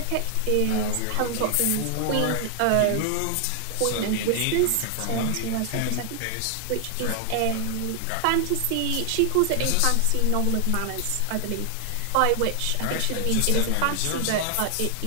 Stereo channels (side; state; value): both; different; correlation 0.00